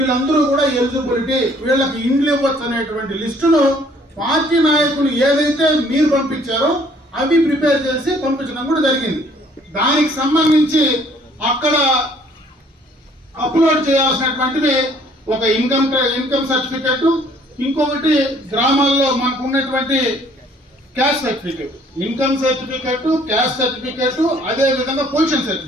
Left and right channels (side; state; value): both; normal; correlation 0.60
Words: కూడా ఎలిజిబిలిటీ వీళ్ళకి ఇండ్లు ఇవ్వచ్చు అనేటువంటి లిస్టును పార్టీ నాయకులు ఏదైతే మీరు పంపించారో అవి ప్రిపేర్ చేసి పంపించడం కూడా జరిగింది. దానికి సంబంధించి అక్కడ అప్లోడ్ చేయాల్సినటువంటివి ఒక ఇన్కమ్ సర్టిఫికెట్, ఇంకొకటి గ్రామాల్లో మనకు ఉన్నటువంటి caste certificate, income certificate, caste certificate, అదే విధంగా పొజిషన్